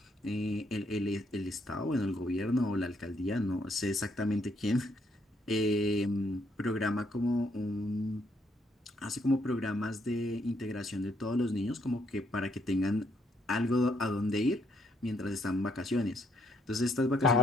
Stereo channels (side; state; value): both; normal; correlation 0.71